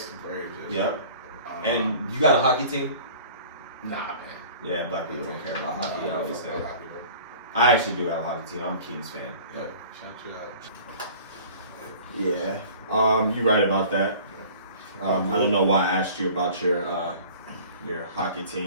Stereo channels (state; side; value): inverted; both; correlation -0.45